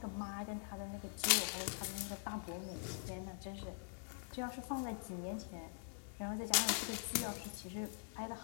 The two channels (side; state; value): right; silent; digital silence